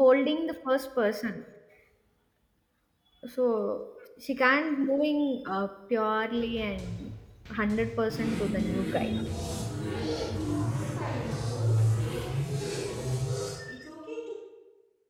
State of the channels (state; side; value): identical; both; correlation 1.00